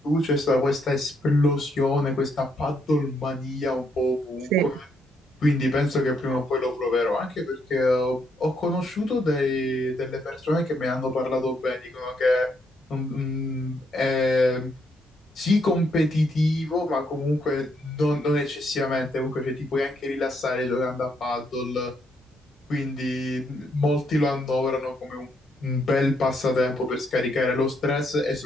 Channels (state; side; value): normal; both; correlation 0.75